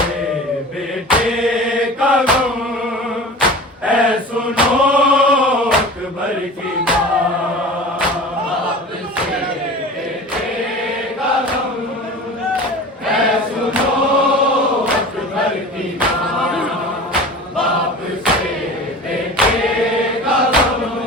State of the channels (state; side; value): normal; both; correlation 0.37